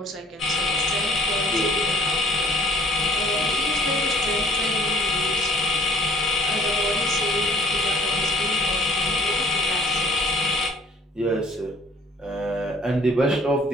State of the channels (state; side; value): normal; both; correlation 0.56